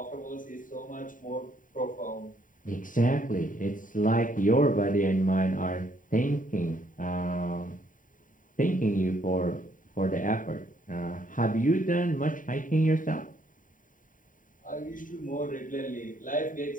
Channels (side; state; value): right; late; 0.39 ms